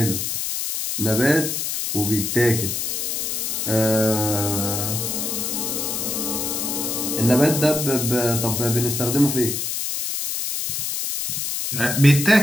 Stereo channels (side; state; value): left; noise; hiss, 2 dB below the sound